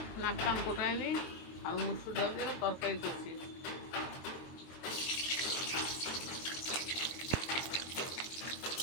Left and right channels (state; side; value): late; right; 23 ms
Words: নাক কান কোটায়নি আর মুসুর ডাল দিয়ে তরকারি করছি।